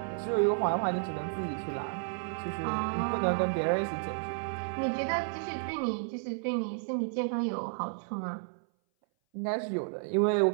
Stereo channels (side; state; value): left; silent; 57 dB below the other